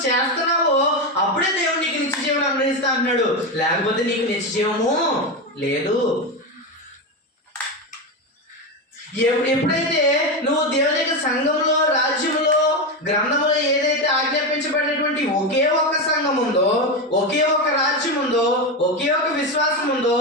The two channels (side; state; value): both; normal; correlation 0.14